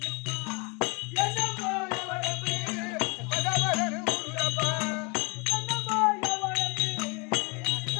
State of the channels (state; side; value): quieter; right; 30.7 dB